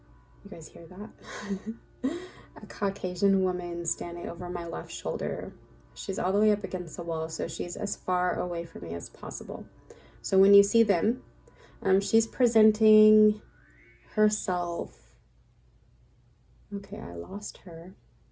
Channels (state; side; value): identical; both; correlation 1.00